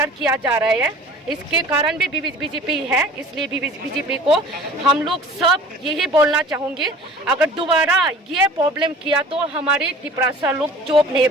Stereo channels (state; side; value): normal; both; correlation 0.45